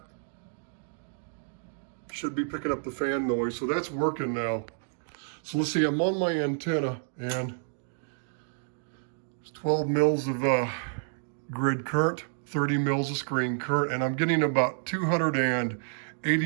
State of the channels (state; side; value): silent; left; digital silence